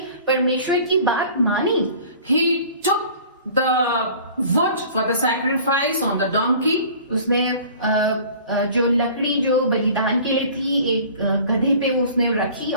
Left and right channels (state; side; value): inverted; both; correlation -0.46